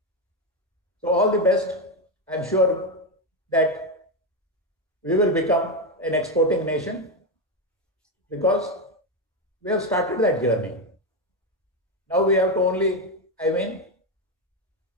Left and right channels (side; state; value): both; normal; correlation 0.09